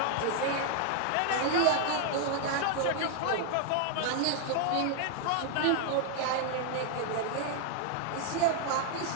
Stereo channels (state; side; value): different; both; correlation 0.00